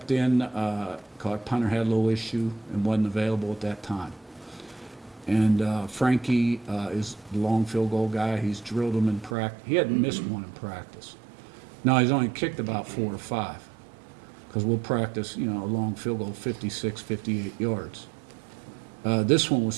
in, punter had a little issue and wasn't available at that time. And Frankie is the long field goal guy. He's drilled them in practice. He hadn't missed one in practice. Now, he's only kicked about 4 or 5 because we'll practice, a long field goal, 56, 58 yards. This one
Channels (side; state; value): left; drops out; at 9.3 s